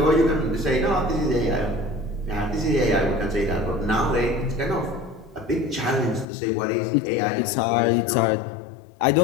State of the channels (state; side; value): drops out; right; at 6.2 s